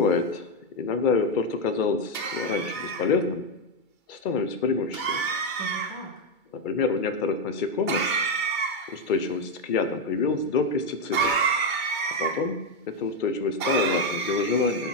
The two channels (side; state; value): right; late; 2.3 ms